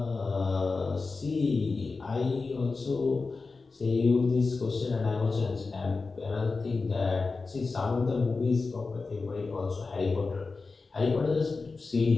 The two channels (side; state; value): right; quieter; 4.1 dB